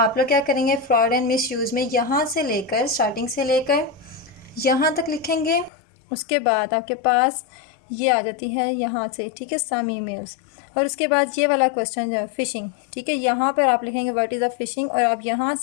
लोग क्या करेंगे, फ्रॉड एंड मिसयूज़ में यहाँ से लेकर, स्टार्टिंग से लेकर यहाँ तक लिखेंगे। उसके बाद आपके पास ये आ जाती है यहाँ से, ठीक है, सम ईमेल्स, और उसके बाद ये वाला क्वेश्चन जो है फ़िशिंग। ठीक है, यहाँ पर आप लिखेंगे व्हाट इज़ अ फ़िशिंग, और आप यहाँ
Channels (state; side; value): drops out; right; at 5.7 s